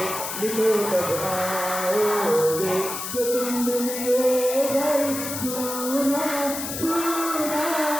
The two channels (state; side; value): noise; left; hiss, 6 dB below the sound